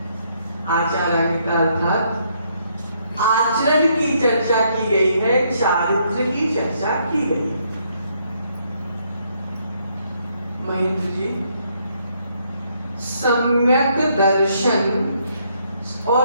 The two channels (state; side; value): inverted; both; correlation -0.71